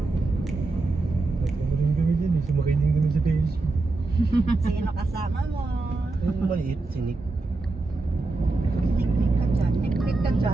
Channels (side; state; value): left; quieter; 3.3 dB